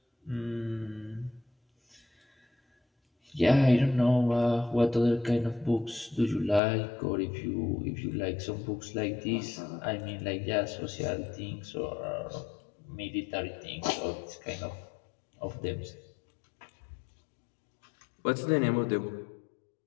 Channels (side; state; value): right; drops out; at 6.6 s